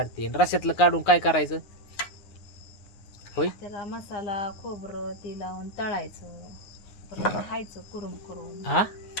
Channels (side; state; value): right; late; 9.6 ms